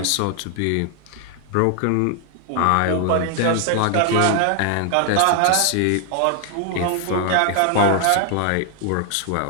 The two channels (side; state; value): both; different; correlation 0.00